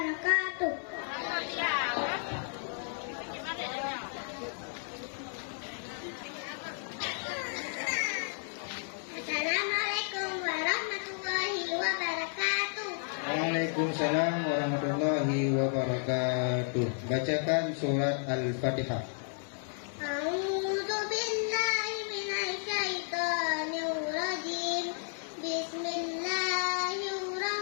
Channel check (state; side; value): silent; right; 56 dB below the other